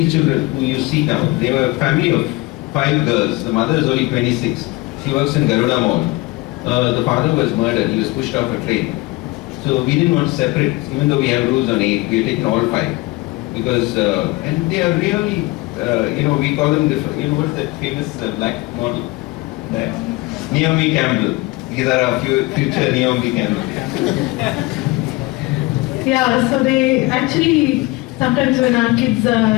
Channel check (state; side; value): quieter; right; 21.9 dB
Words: children who you see now. They were a family of 5 girls. The mother is only 26. She works in Garuda Mall. The father was murdered. He was pushed off a train. So we didn't want to separate, even though we have rules on 8. We have taken all 5 because and they are really, we call them what's that famous black model? Naomi Campbell. These are our future Naomi Campbell. Yeah, so they actually, sometimes when our kids are a